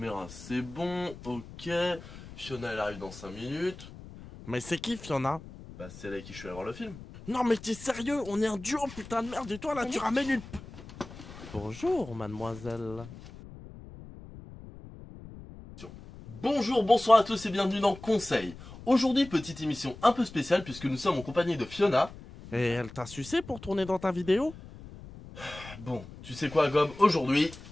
c'est bon. Ok. Fiona, elle arrive dans 5 minutes. Mais c'est qui Fiona? Bah, c'est elle avec qui je suis allé voir le film. Non mais t'es sérieux? On est un duo putain de merde et toi là Mais tu mec. ramènes une... Bonjour mademoiselle. Bonjour, bonsoir à tous et bienvenue dans Conseil. Aujourd'hui, petite émission un peu spéciale puisque nous sommes en compagnie de Fiona. Et elle t'a sucé pour tourner dans ta vidéo? Bon, tu sais quoi, Gob? Aujourd'hui,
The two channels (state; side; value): noise; left; rumble, 16 dB below the sound